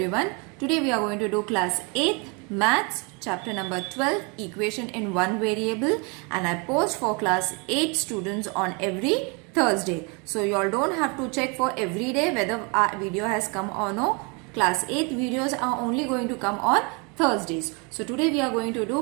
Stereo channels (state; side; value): quieter; left; 31.7 dB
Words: Today we are going to do class 8th maths chapter number 12 equation in one variable, and I post for class 8 students on every Thursday. So you all don't have to check for every day whether our video has come or no. Class 8 videos are only going to come on Thursdays. So today we are going to